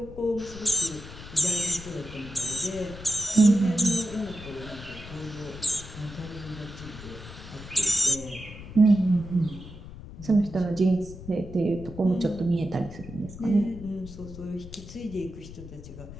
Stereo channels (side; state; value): left; noise; rumble, 14 dB below the sound